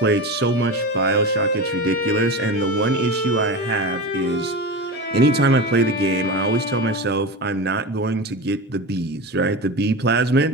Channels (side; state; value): both; normal; correlation 0.25